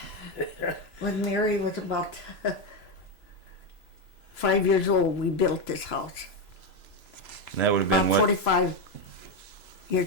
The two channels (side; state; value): right; late; 3.0 ms